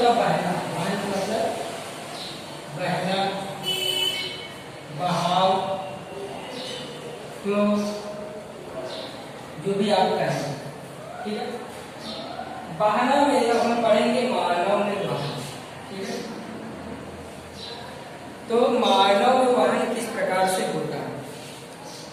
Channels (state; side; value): identical; both; correlation 1.00